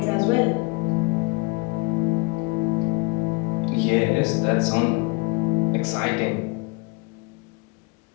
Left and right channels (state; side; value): quieter; right; 27.8 dB